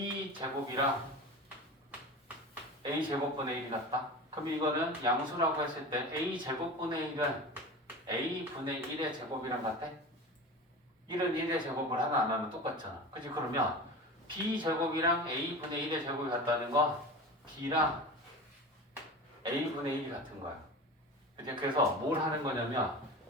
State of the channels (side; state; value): both; normal; correlation 0.31